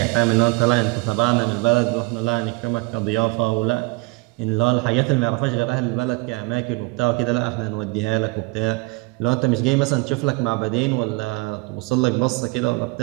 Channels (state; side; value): quieter; left; 27.0 dB